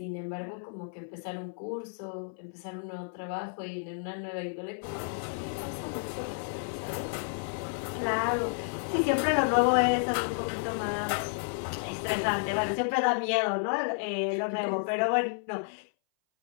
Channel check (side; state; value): right; silent; 57 dB below the other